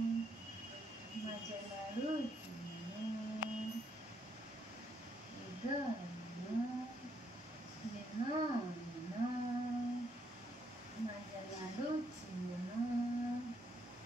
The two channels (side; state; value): both; normal; correlation 0.73